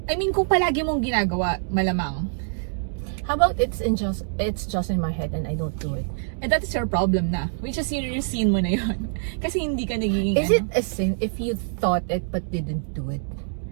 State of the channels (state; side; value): silent; left; digital silence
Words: I mean, kung palagi mong ginagawa, malamang. How about it's just in my head and I don't do it? And that is your problem na. Which is yung scene mo na yun. Kasi hindi ka nagiging Is it a sin if you thought it but didn't do it?